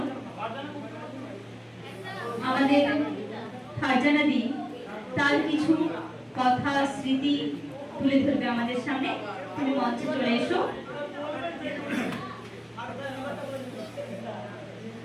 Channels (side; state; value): both; identical; correlation 1.00